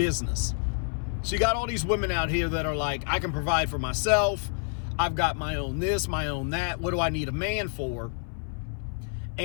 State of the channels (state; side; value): silent; right; 57 dB below the other